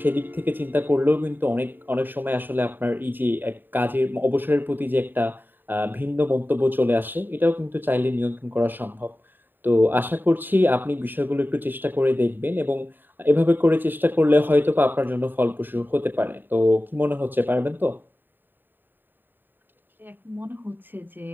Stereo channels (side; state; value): left; late; 0.093 ms